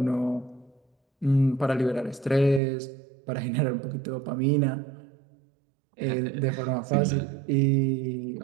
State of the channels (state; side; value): drops out; left; at 2.6 s